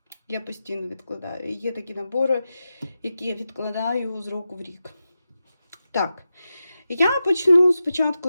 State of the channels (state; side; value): inverted; both; correlation -0.91